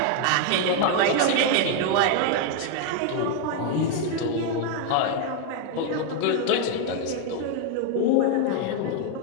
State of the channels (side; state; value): both; different; correlation 0.01